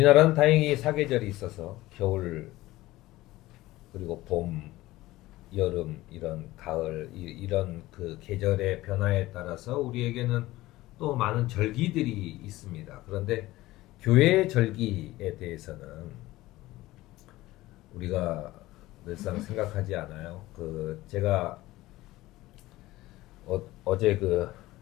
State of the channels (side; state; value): right; quieter; 17.7 dB